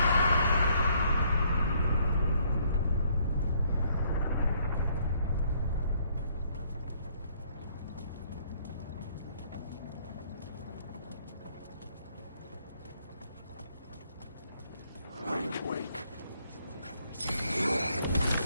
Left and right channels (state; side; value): inverted; both; correlation -0.67